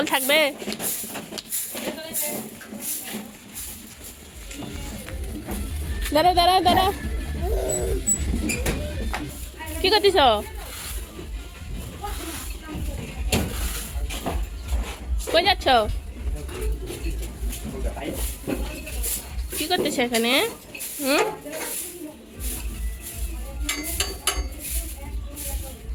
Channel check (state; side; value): identical; both; correlation 1.00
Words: থাকবে। দাঁড়া দাঁড়া দাঁড়া, কি করতেছ? কই যাচ্ছ? কি করতেছ এখানে?